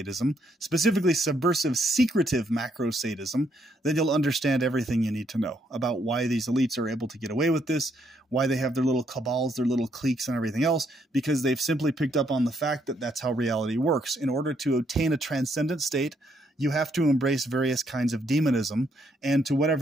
specifically subversive, secretive macro-sadism, then you'll understand everything you need to know about why these elites are able to get away with this, why they have their little cabals, their little cliques and everything else, because they've simply picked up on the fact that that's how reality works. In order to obtain a transcendent state, you have to embrace various kinds of demonism, and to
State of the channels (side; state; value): both; normal; correlation 0.73